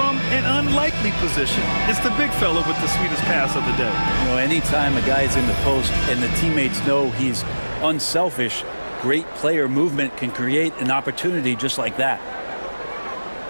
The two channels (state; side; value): inverted; both; correlation -1.00